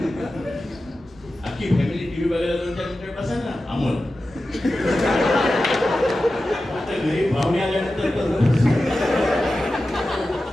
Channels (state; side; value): normal; both; correlation 0.93